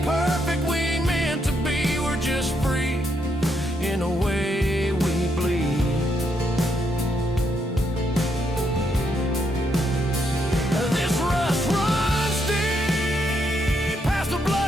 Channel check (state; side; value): normal; both; correlation 0.77